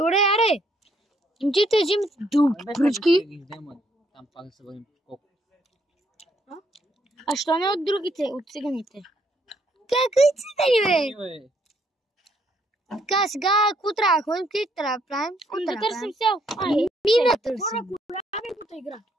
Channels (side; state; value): both; normal; correlation 0.70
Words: аре. Ти те взимат дълги пръчки. Да ги вземат. Там пак да се върнем колко. А що не от другите, от циганите? Какви цигани, бе? Бе, Така, сега, какво трябва да ходим? Къде трябва да правим? Какво Да трябва да търсим правим? сел. Мина търсим. Любимата игра.